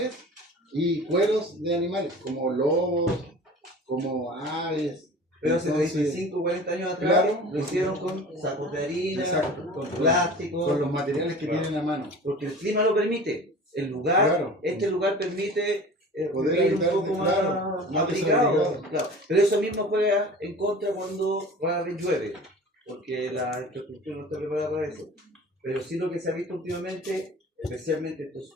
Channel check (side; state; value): both; normal; correlation 0.40